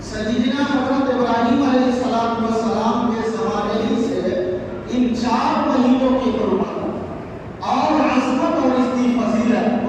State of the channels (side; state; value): both; identical; correlation 1.00